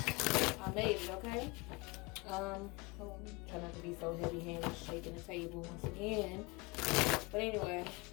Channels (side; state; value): right; quieter; 25.3 dB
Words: I made it, okay? Try not to be so heavy-handed, shaking the table once again. But anyway.